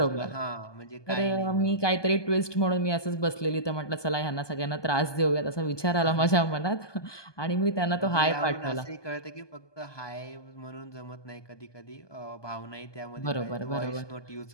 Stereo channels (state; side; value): late; right; 1.2 ms